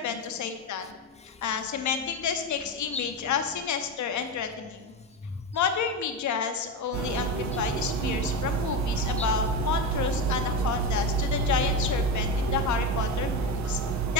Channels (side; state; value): both; normal; correlation 0.16